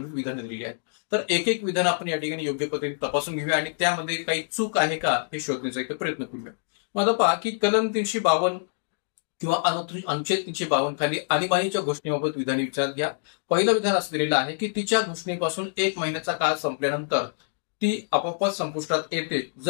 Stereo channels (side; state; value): right; silent; digital silence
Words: विधानं दिलेली आहेत. तर एक विधान आपण या ठिकाणी योग्य पद्धतीने तपासून घेऊया आणि त्यामध्ये काही चूक आहे का हे शोधण्याचा एक प्रयत्न करूया. मग आता पहा की कलम 352 किंवा अनुच्छेद 352 खाली आणीबाणीच्या घोषणेबाबत विधाने विचारात घ्या. पहिलं विधान असं दिलेलं आहे की तिच्या घोषणेपासून 1 महिन्याचा काळ संपल्यानंतर ती आपोआपच संपुष्टात येते